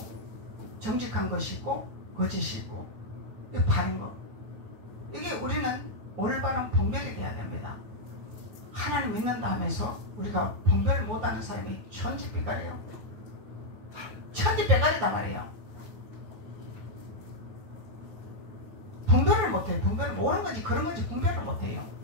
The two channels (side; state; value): left; late; 9.2 ms